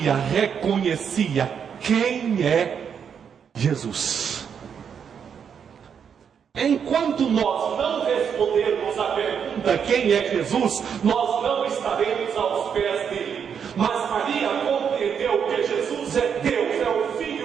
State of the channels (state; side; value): quieter; left; 7.4 dB